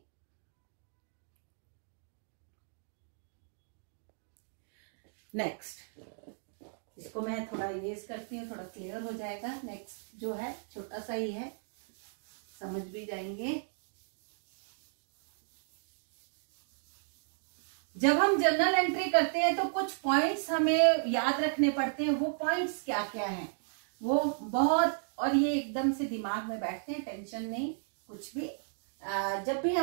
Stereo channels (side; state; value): left; silent; digital silence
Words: नेक्स्ट, इसको मैं थोड़ा इरेज करती हूँ, थोड़ा क्लियर हो जाएगा। नेक्स्ट जो है छोटा सा ही है, समझ भी जाएंगे। जब हम जर्नल एंट्री करते हैं तो कुछ पॉइंट्स हमें याद रखने पड़ते हैं। वो पॉइंट्स क्या क्या हैं वो बहुत, और ये एकदम से दिमाग में बैठते हैं, टेंशन नहीं कुछ भी। जब भी